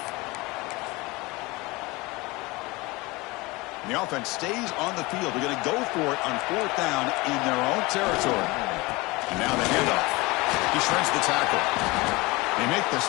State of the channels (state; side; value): quieter; right; 23.1 dB